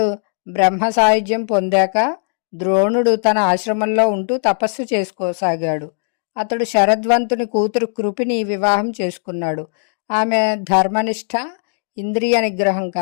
బ్రహ్మ సాయుధ్యం పొందాక ద్రోణుడు తన ఆశ్రమంలో ఉంటూ తపస్సు చేసుకోసాగాడు. అతడు శరద్వంతుని కూతురు కృపిని వివాహం చేసుకున్నాడు. ఆమె ధర్మనిష్ట, ఇంద్రియ నిగ్రహం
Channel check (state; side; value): silent; right; digital silence